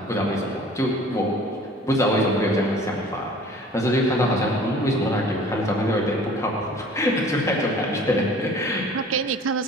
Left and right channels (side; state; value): both; normal; correlation 0.48